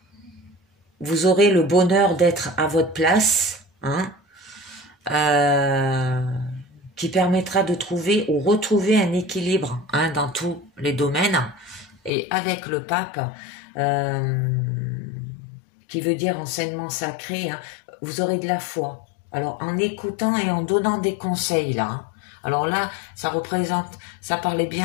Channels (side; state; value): right; drops out; at 12.1 s